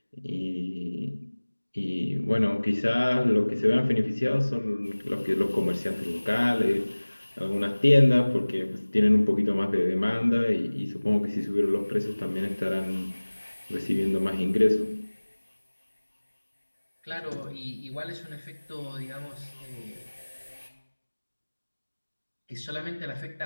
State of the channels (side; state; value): both; inverted; correlation -1.00